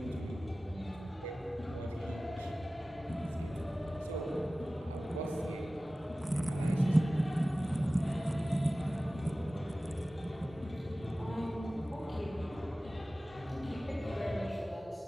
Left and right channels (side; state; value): both; normal; correlation 0.97